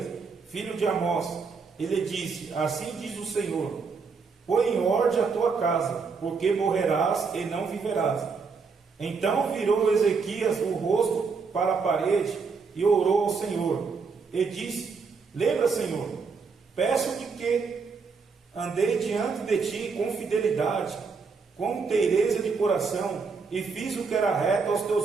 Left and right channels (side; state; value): left; quieter; 5.0 dB